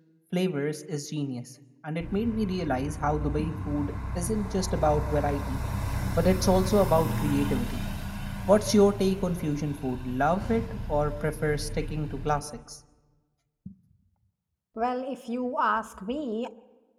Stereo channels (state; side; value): identical; both; correlation 1.00